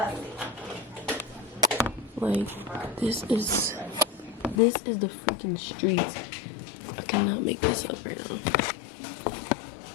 Like, this is the freaking streets. I cannot make this up right now.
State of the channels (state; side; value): drops out; right; at 4.6 s